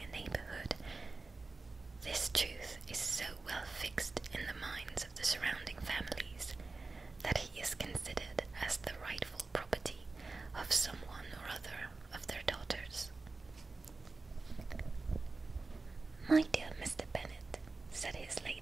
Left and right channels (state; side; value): quieter; left; 3.7 dB